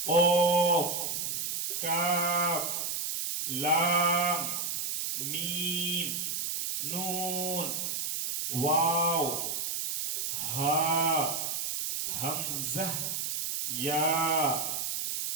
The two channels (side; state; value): right; noise; hiss, 2 dB below the sound